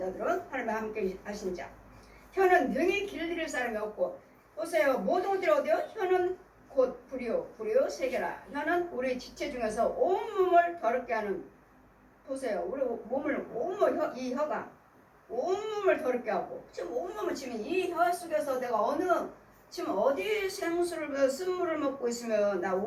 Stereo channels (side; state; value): both; identical; correlation 1.00